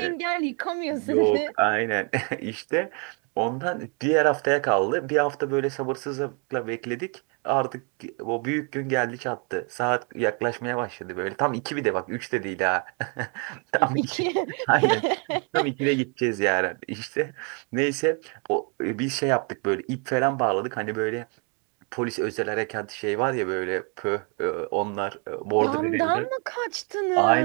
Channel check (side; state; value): left; quieter; 36.7 dB